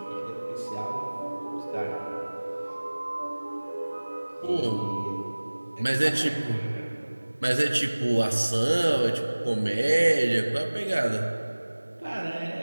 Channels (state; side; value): inverted; both; correlation -1.00